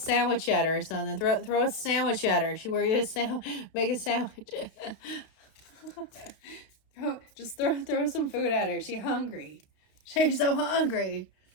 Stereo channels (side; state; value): right; late; 31 ms